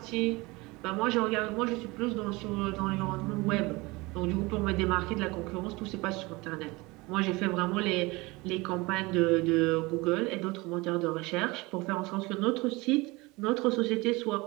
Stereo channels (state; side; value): quieter; left; 23.5 dB